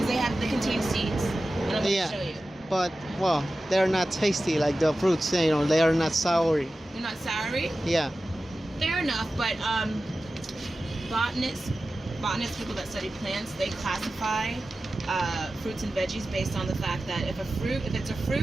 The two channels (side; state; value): both; normal; correlation 0.94